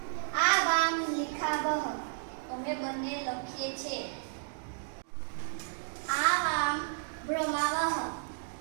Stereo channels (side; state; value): left; silent; digital silence